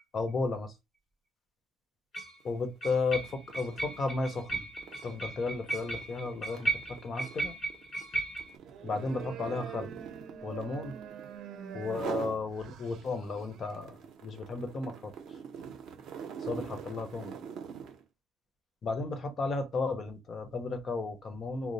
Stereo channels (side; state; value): both; normal; correlation 0.77